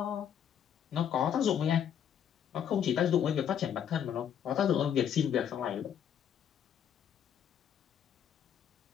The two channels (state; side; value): quieter; right; 9.0 dB